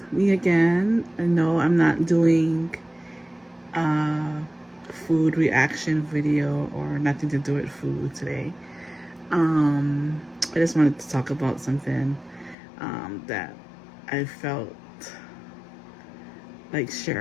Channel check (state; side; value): drops out; right; at 12.6 s